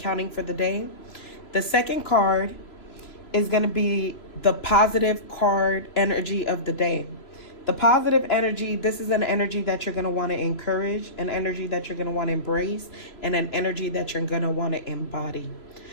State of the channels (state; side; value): late; right; 2.9 ms